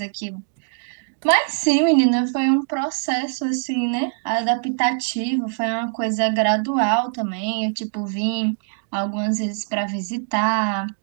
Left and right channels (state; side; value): silent; left; digital silence